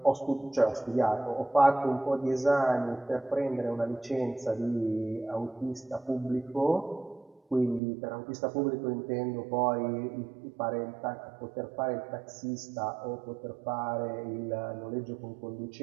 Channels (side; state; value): left; drops out; at 7.8 s